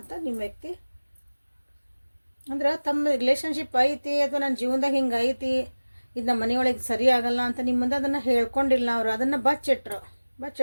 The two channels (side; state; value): both; inverted; correlation -1.00